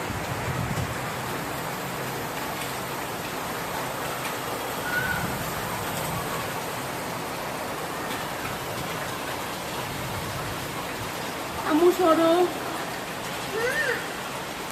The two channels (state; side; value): identical; both; correlation 1.00